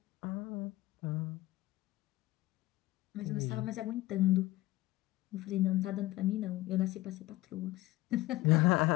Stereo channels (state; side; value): quieter; right; 18.0 dB